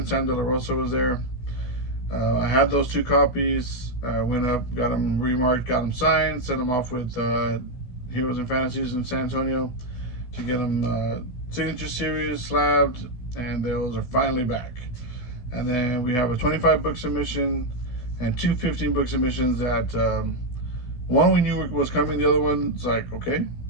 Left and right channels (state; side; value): late; right; 16 ms